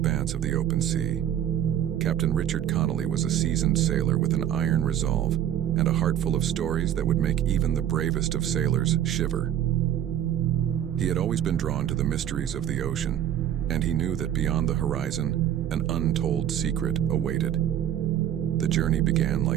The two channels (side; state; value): left; quieter; 10.7 dB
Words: of the open sea. Captain Richard Connolly was a seasoned sailor with an iron resolve and a heart full of stories that would make even the bravest of sailors shiver. He had always been drawn to the mysteries of the ocean, and he knew that beyond the horizon, an untold secret awaited. The journey began